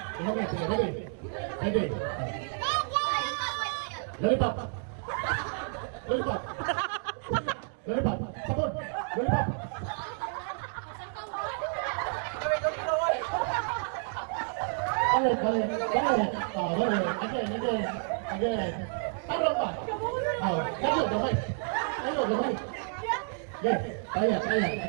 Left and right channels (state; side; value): silent; left; 58 dB below the other